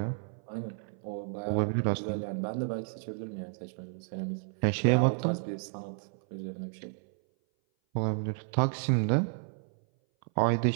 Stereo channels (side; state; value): left; silent; 57 dB below the other